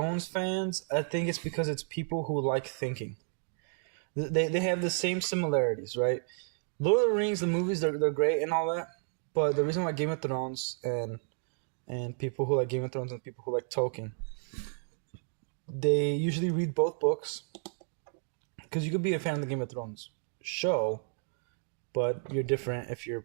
fans, I think it's because it's people who like thinking. They have the same similarities, right? Lord of the Rings, the movies, they're great and all that. But the reason why Game of Thrones and people who like Game of Thrones and people who like Tolkien, they usually read both books. Because you could be a fan of the Game of Thrones show, but you're different if you're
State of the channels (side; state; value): left; silent; 56 dB below the other